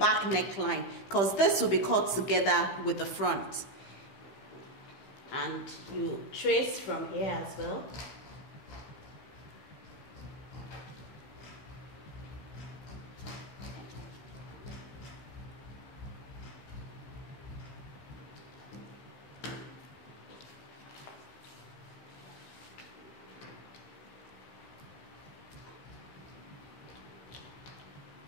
neckline, because this will be cut together with the front. And you trace from here as well.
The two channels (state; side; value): late; right; 15 ms